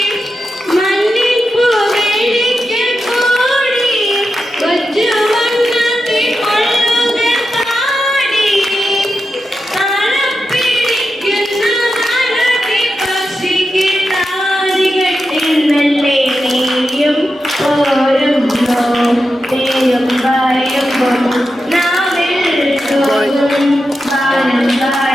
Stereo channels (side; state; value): both; normal; correlation 0.89